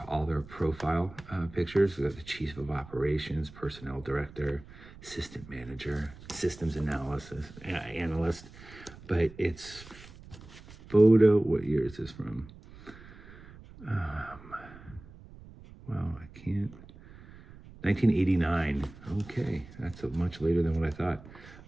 all their profile pictures. We got the Chief of Operations, Personnel Director, Assistant Manager, Systems Analyst. But it's photo, what year is this from? Well, I can't. 1989. Okay, that's much later than what I thought.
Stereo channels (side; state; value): right; noise; rumble, 19 dB below the sound